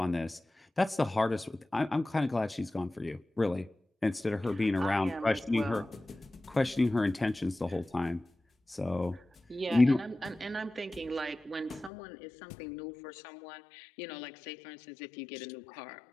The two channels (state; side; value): drops out; right; at 11.9 s